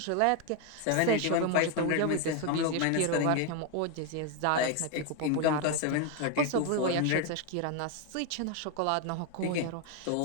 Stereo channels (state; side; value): different; both; correlation 0.01